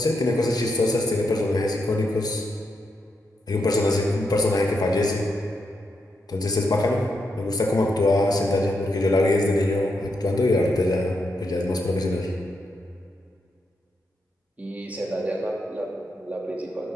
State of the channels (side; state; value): both; normal; correlation 0.83